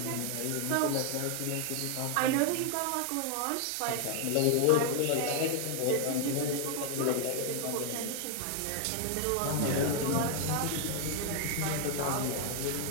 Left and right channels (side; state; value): both; different; correlation 0.00